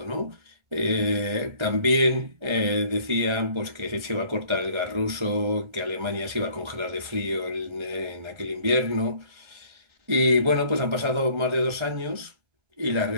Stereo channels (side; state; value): left; late; 1.4 ms